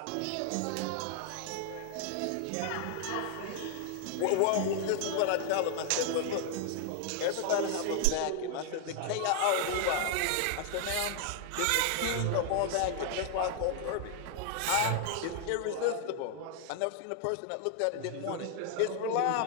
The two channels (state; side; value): different; both; correlation 0.00